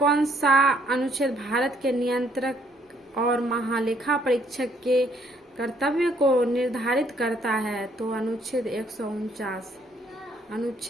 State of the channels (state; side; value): normal; both; correlation 0.66